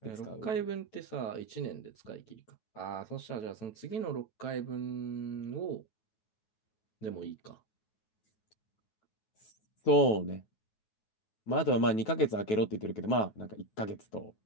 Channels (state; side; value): late; right; 9.3 ms